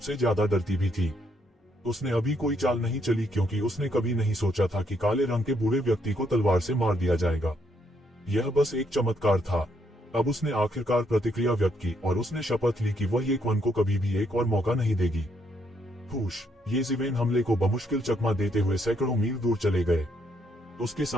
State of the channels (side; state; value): both; normal; correlation 0.73